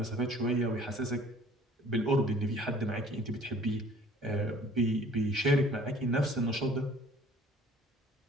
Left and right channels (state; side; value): normal; both; correlation 0.52